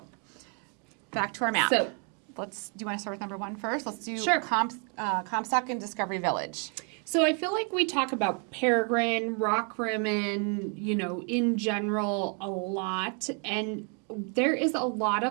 back to our map. So do you want to start with number 1 first? Let's do Comstock and Discovery Village. So I feel like we talk about Peregrine, Rockrimmon, in general a lot. And there is a lot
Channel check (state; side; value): quieter; left; 38.9 dB